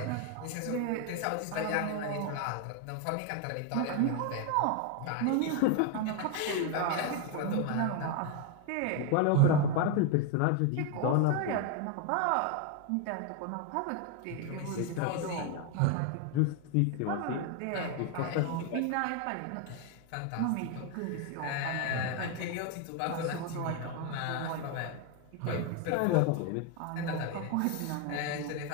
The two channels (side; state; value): both; different; correlation 0.01